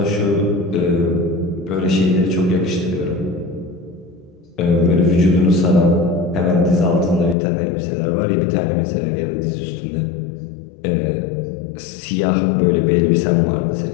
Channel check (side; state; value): right; drops out; at 7.4 s